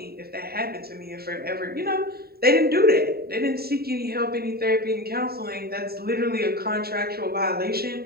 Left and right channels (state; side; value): late; left; 0.45 ms